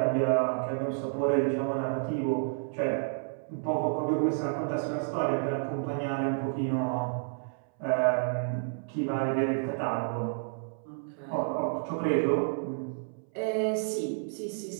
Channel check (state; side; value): silent; left; 58 dB below the other